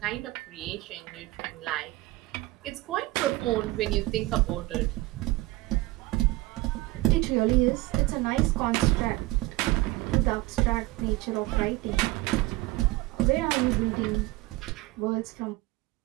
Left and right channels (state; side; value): quieter; left; 19.8 dB